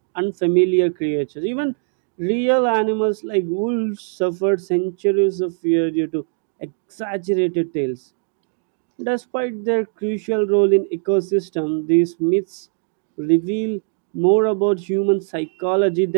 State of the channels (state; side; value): silent; left; 65 dB below the other